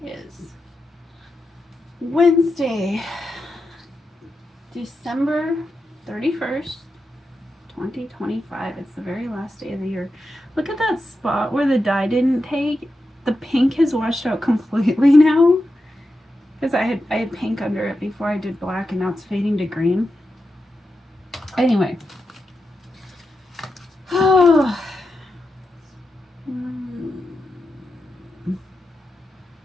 is Wednesday, December 31st, 2025. It's the very last day of the year. Look at that spot where the dye didn't take. The pink has washed out completely now. Because I had pink under it before I did black, and now it's fading to green. Anyway. Oh.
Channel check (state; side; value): normal; both; correlation 0.89